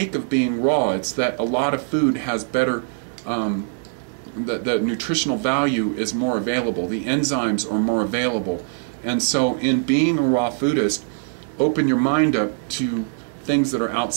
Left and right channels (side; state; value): left; silent; digital silence